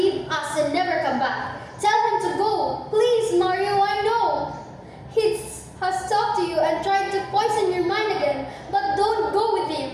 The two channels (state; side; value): identical; both; correlation 1.00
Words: us and never come back. Tell him to go. Please, Mario, I know. He has talked to you and tried to poison your mind again, but don't go with